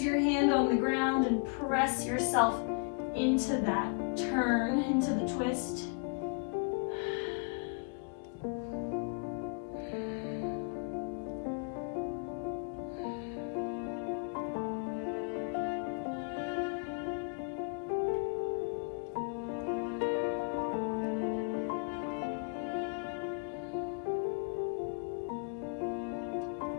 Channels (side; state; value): right; quieter; 39.7 dB